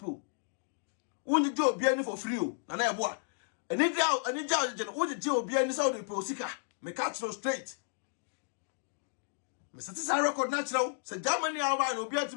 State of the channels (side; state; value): right; silent; digital silence